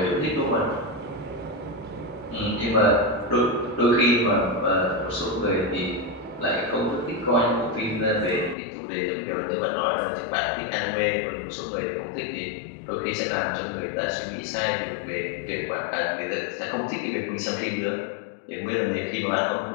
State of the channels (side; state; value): right; drops out; at 8.6 s